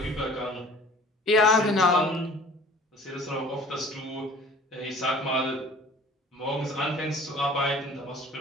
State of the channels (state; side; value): normal; both; correlation 0.47